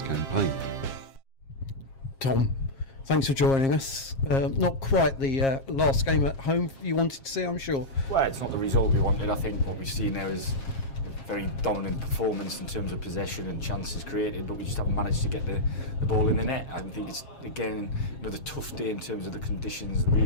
campaign. Tom, thanks for joining us. Not quite the last game at home you wanted to see, I'm sure. Well, it's not the result we wanted. I think what we've seen there is a very dominant performance in terms of possession and chances created, but we just haven't managed to get the ball in the net. I think it's, again, another tough day in terms of the conditions,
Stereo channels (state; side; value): late; right; 7.4 ms